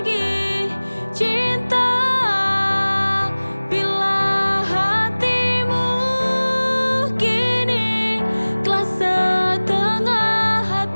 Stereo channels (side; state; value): both; inverted; correlation -1.00